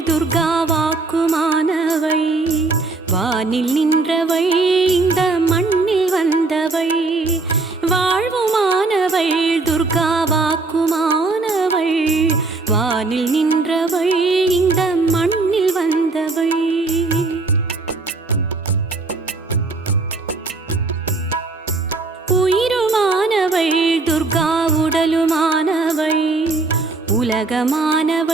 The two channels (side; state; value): left; quieter; 3.6 dB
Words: துர்கா வாக்குமானவள் வானில் நின்றவள் இந்த மண்ணில் வந்தவள் வாழ்வுமானவள் துர்கா வாக்குமானவள் வானில் நின்றவள் இந்த மண்ணில் வந்தவள் உயிருமானவள் துர்கா உடலுமானவள்